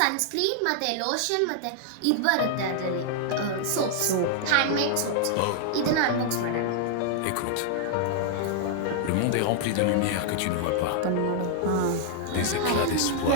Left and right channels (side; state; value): both; different; correlation -0.01